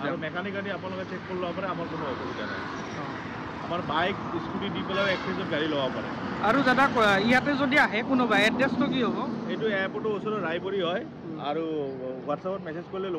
আৰু মেকানিক গাড়ী আপোনালোকে চেক কৰি ল'ব পাৰে আমাৰ কোনো অসুবিধা নাই আমাৰ বাইক স্কুটি দি পেলাই এক্সচেঞ্জত গাড়ী ল'ব পাৰে আৰু দাদা ইয়াতে যদি আহে কোনোবা এড্ৰেছটো কি হ'ব এইটো এয়াৰপোৰ্টৰ ওচৰত ৰায়পুৰী হয় আৰু হোৱাটছআপত মেছেজ কৰিলে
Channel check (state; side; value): identical; both; correlation 1.00